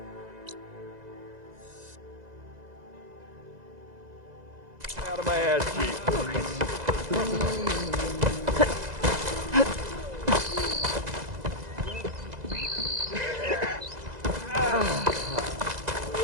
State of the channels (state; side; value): late; left; 2.0 ms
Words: out of my ass cheek.